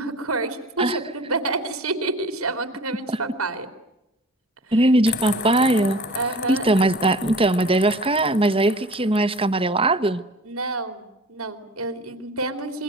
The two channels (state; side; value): normal; both; correlation 0.43